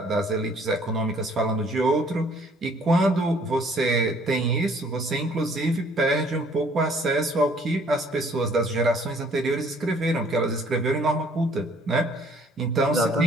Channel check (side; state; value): both; normal; correlation 0.59